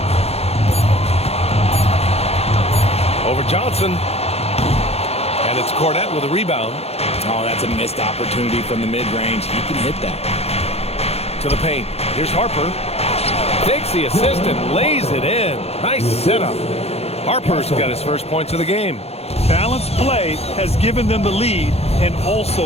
Over Johnson. And it's Cornette with a rebound. Oh, that's a missed opportunity from the mid-range. He can hit that. To the paint. Here's Harper. Takes the assist and lays it in. Nice setup. Harper's got his first points of the game. Balanced play has given them the lead and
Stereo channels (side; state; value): right; late; 0.30 ms